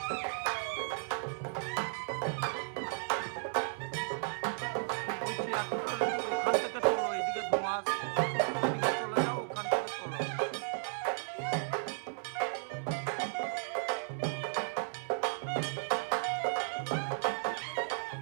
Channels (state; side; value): silent; left; 55 dB below the other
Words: ওই চেয়ারটা ওখান থেকে তোলো, এইদিকে ধোঁয়া আসছে, ওইদিকে চলে যাও, ওখান থেকে তোলো।